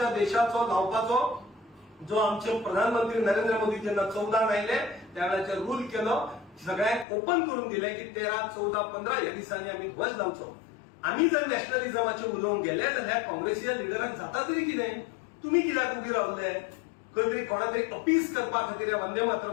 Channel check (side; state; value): right; drops out; at 7.1 s